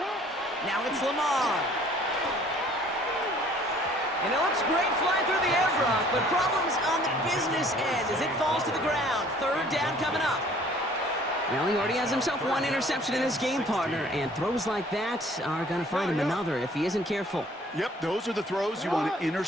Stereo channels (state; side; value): normal; both; correlation 0.55